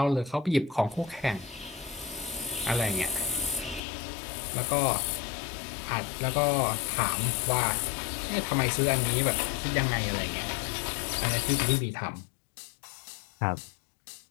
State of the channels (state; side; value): drops out; right; at 3.8 s